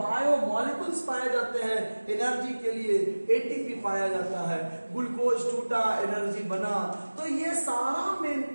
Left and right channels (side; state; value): both; inverted; correlation -1.00